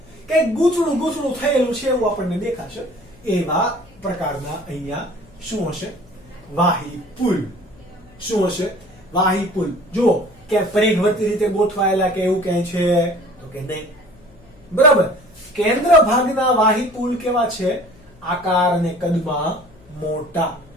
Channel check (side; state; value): left; noise; hum, 26 dB below the sound